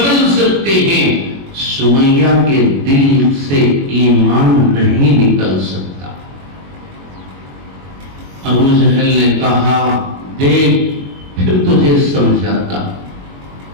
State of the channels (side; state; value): left; late; 21 ms